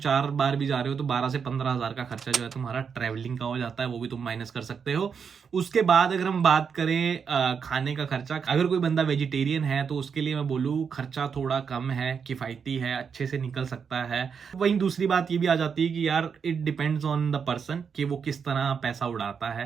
बार भी जा रहे हो, तो 12 से 15 हज़ार का खर्चा जो है तुम्हारा ट्रैवलिंग का हो जाता है, वो भी तुम माइनस कर सकते हो। उसके बाद अगर हम बात करें खाने का खर्चा, अगर कोई बंदा वेजिटेरियन है तो उसके लिए मैं बोलूँ खर्चा थोड़ा कम है, किफ़ायती है, अच्छे से निकल सकता है। वहीं दूसरी बात ये भी आ जाती है कि यार it depends on the person कि वो किस तरह पैसा उड़ाता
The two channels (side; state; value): left; quieter; 6.5 dB